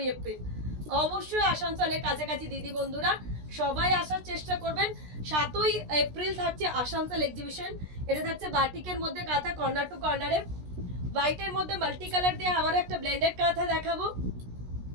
এপ্রিল। অবশ্যই আসানসোলের কাছাকাছি দিদি বন্ধুরা সবাই আসার চেষ্টা করবেন। 7ই এপ্রিল থাকছে আসানসোল এক্সিবিশন। এটা থাকছে বাটিকের মধ্যে কাঁথা, কর্নার টু কর্নারে, হোয়াইটের মধ্যে মাল্টি কালার দিয়ে আবার একটা ব্লেন্ডেড কাঁথা দেখাবো।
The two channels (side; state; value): left; late; 16 ms